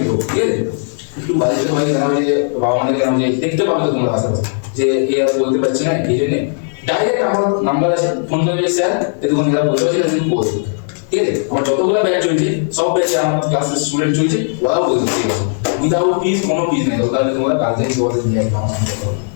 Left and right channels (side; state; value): right; silent; 69 dB below the other